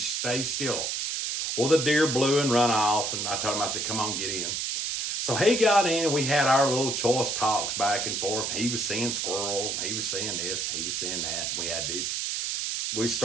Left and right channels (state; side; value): noise; right; hiss, 1 dB below the sound